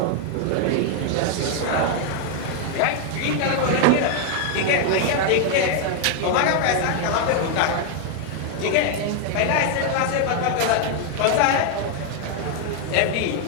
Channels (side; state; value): both; different; correlation 0.00